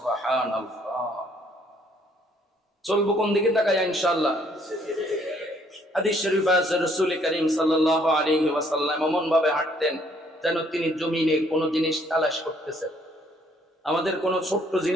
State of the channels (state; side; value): normal; both; correlation 0.65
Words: চলবো কোন দিকে তাকায়া? ইনশাআল্লাহ। হাদিস শরীফ আছে রাসূল করিম সাল্লাল্লাহু আলাইহি ওয়াসাল্লাম এমন ভাবে হাঁটতেন যেন তিনি জমিনে কোনো জিনিস তালাশ করতেছেন। আমাদের কোনো ছোট্ট